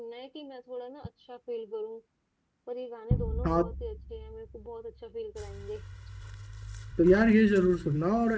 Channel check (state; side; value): identical; both; correlation 1.00